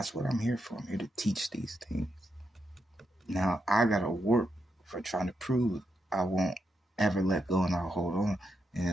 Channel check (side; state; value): both; normal; correlation 0.83